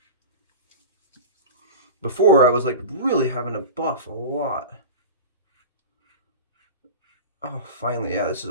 Before, I was like really having to buff a lot. Oh, finally, yeah, this is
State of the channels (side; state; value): both; inverted; correlation -0.30